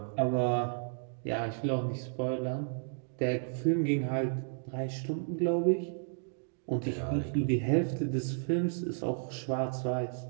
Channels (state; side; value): silent; left; digital silence